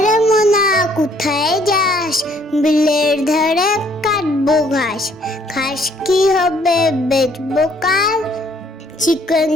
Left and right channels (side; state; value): both; normal; correlation 0.63